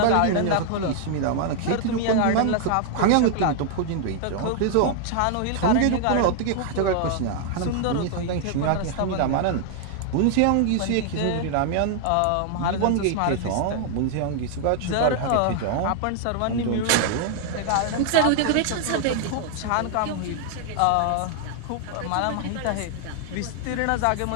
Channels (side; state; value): both; different; correlation 0.00